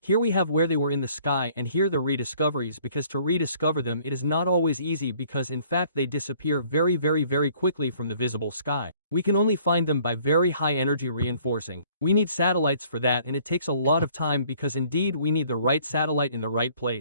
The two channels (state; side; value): inverted; both; correlation -0.58